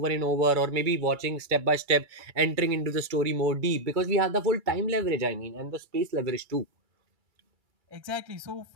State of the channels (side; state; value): left; late; 2.2 ms